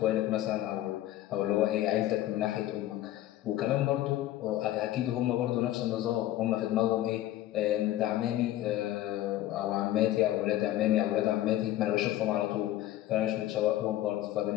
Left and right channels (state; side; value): quieter; right; 14.1 dB